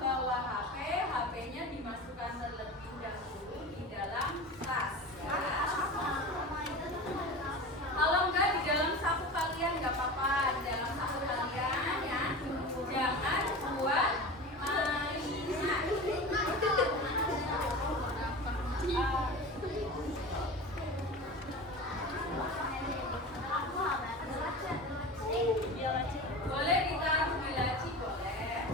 HP, HP-nya dimasukkan terlebih dahulu di dalam tas. Ya. Kalau enggak di dalam saku kalian nggak apa-apa, di dalam saku kalian ya. Jangan buat mainan. Boleh ditaruh di laci, boleh.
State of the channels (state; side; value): normal; both; correlation 0.31